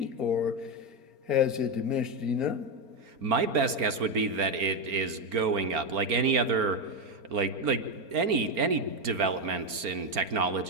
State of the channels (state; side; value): late; left; 4.4 ms